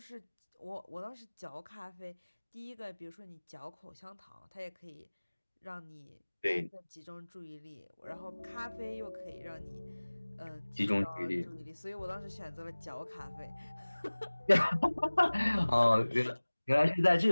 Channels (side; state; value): both; inverted; correlation -1.00